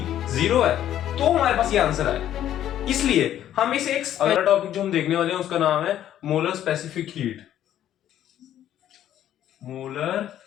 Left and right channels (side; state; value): right; quieter; 11.5 dB